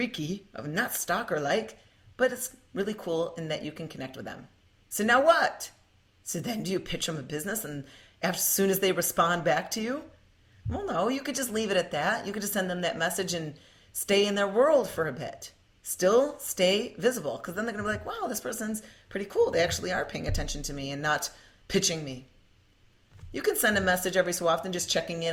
not stalker-like, but it's really cool in that you can connect with them. So now what? So then do you pitch them a business and as soon as they respond back to you? Well, no, you could just leave it at that. You could just send them that message and stay in their world for a bit. Still stay visible, because then they're going to be like, wow, this person's pretty cool. They actually are paying attention to me and not pitching me. You can send a message every so often just checking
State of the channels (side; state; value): both; identical; correlation 1.00